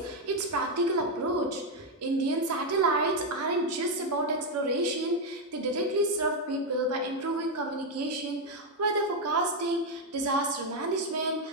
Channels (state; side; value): normal; both; correlation 0.04